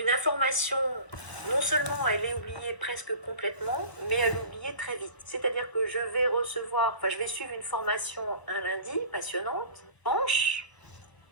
information, non seulement elle est oubliée presque complètement, mais elle est oubliée très vite. C'est-à-dire que je vais suivre une formation un lundi, passionnante,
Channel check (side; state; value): right; late; 1.0 ms